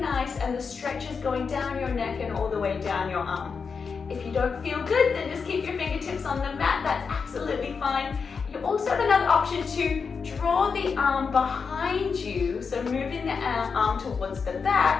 and the stretch is going down your neck and all the way down your arm. If you don't feel good, then just keep your fingertips on the mat. That's absolutely fine. You also have another option to draw the arm behind you, so moving the arm towards the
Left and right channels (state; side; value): quieter; right; 5.5 dB